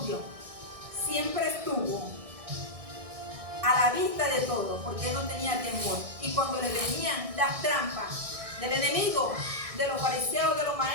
siempre estuvo a la vista de todo, porque él no tenía temor. Y cuando le venían las trampas del enemigo, de los fariseos, de los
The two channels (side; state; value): left; late; 1.6 ms